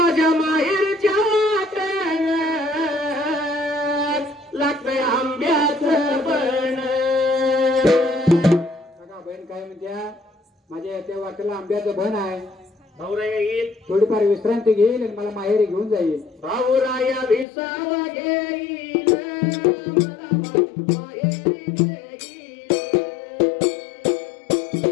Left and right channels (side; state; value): right; drops out; at 17.4 s